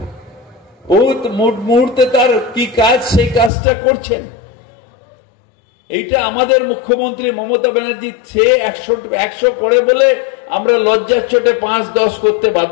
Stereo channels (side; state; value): right; drops out; at 3.5 s